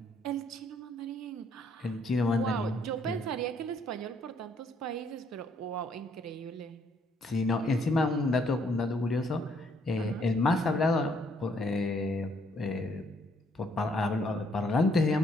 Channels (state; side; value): normal; both; correlation 0.68